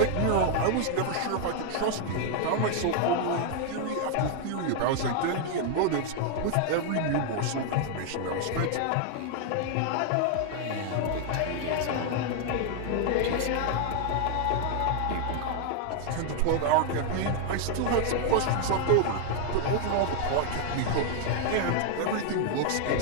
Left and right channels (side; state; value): both; different; correlation 0.00